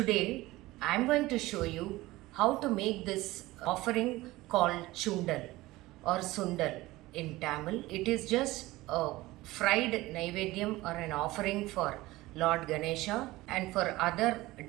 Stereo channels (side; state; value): left; quieter; 18.8 dB